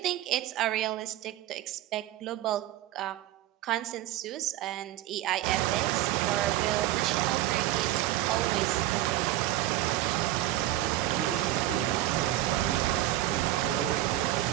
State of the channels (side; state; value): left; quieter; 14.5 dB